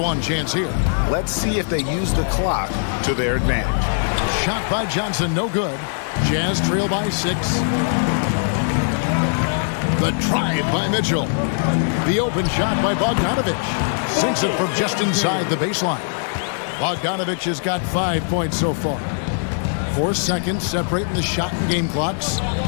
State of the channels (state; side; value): silent; right; digital silence